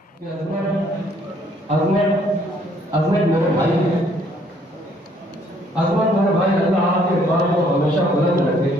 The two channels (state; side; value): normal; both; correlation 0.64